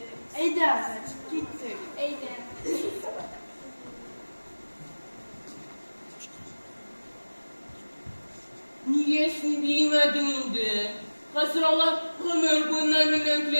Eyde azat, gittik. Eyde. Niyesini bilmedin indi. Hazıralar ömür boyundan bilen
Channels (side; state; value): both; inverted; correlation -1.00